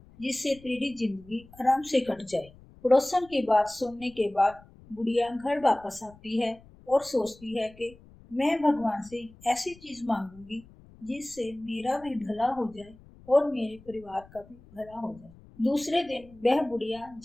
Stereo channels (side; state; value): left; noise; rumble, 23 dB below the sound